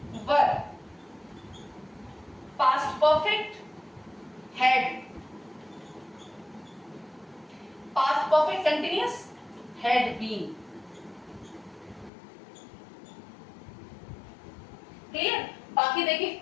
were, past perfect had, past perfect continuous had been। Clear. बाकी देखिए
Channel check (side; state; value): right; drops out; at 12.1 s